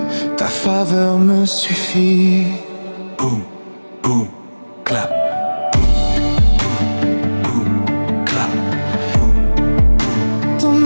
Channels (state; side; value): inverted; both; correlation -1.00